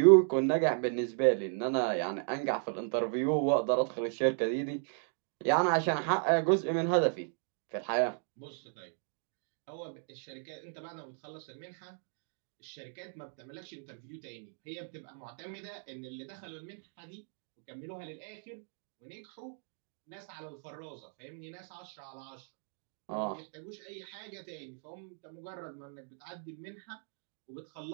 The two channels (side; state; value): left; silent; 54 dB below the other